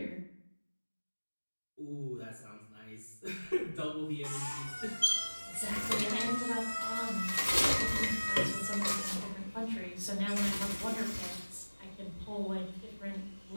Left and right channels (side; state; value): both; inverted; correlation -1.00